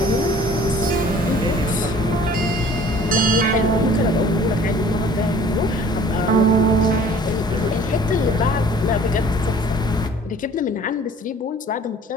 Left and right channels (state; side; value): normal; both; correlation 0.50